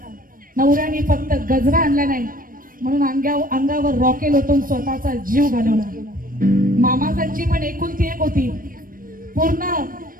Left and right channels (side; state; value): left; late; 0.41 ms